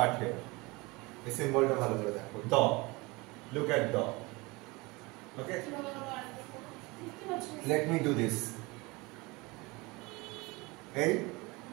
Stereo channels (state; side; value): quieter; left; 24.5 dB